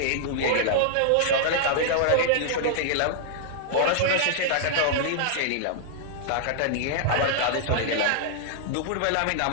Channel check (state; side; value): different; both; correlation -0.01